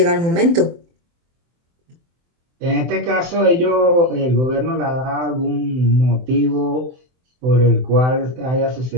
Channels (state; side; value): late; left; 23 ms